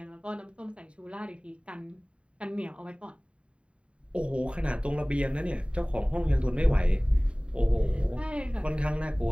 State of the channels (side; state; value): left; late; 0.058 ms